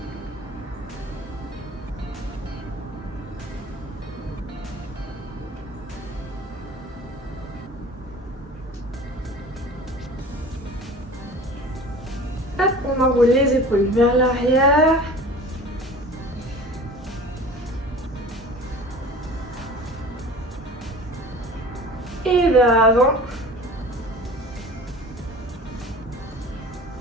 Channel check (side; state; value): both; normal; correlation 0.41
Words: Hop, on enroule les épaules vers l'arrière. Et vers l'avant.